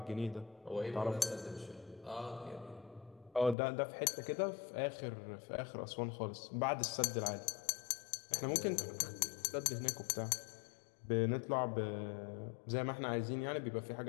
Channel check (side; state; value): right; drops out; at 3.6 s